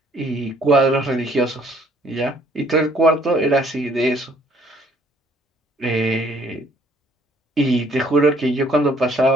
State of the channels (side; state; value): both; normal; correlation 0.62